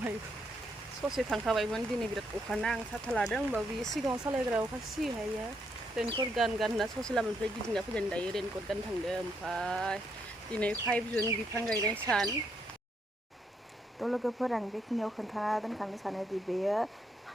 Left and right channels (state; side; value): normal; both; correlation 0.76